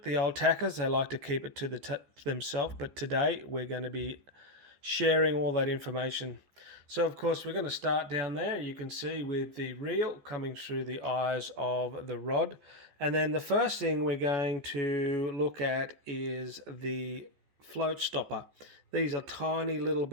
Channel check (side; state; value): left; late; 14 ms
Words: The old tackers, they like to keep it to themselves, but today we're going to be sharing all that information. So, of course, we're going to start down there. You can see with the reel coming through the eyes of the rod. And then the first thing we're going to look at is the float stopper. These are tiny little